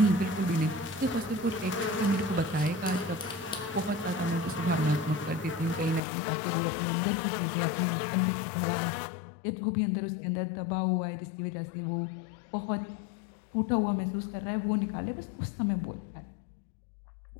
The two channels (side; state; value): right; drops out; at 6.0 s